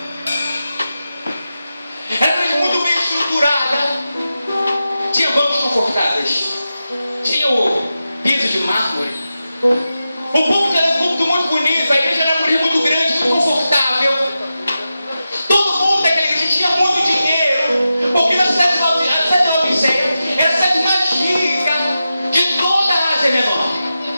Era uma igreja muito bem estruturada. Tinha bancos confortáveis. Tinha o piso de mármore. O púlpito era um púlpito muito bonito. A igreja era uma igreja muito grande, muito confortável. Todo mundo daquela igreja tinha muito dinheiro, porque na cidade de Laodiceia era a cidade mais rica de toda a Ásia Menor.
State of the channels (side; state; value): both; inverted; correlation -0.91